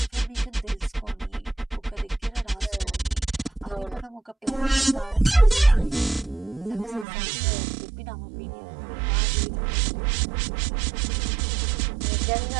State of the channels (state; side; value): drops out; left; at 7.1 s